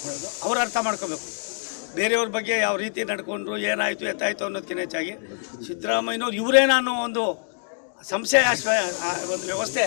ಅವ್ರು ಅರ್ಥ ಮಾಡ್ಕೋಬೇಕು. ಬೇರೆಯವ್ರ ಬಗ್ಗೆ ಯಾವ ರೀತಿ ನಡ್ಕೊಂಡ್ರು, ಏನಾಯಿತು ಎತ್ತಾಯಿತು ಅನ್ನೋದಕ್ಕಿಂತ ಹೆಚ್ಚಾಗಿ ಸಿದ್ದರಾಮಯ್ಯನವ್ರು ಇವರೇನೋ ಒಂದು ಸಂಶಯ ಒಂದು ವ್ಯವಸ್ಥೆ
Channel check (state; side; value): silent; right; digital silence